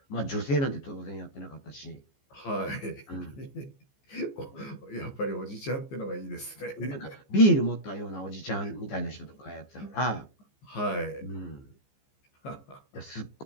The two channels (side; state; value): right; late; 14 ms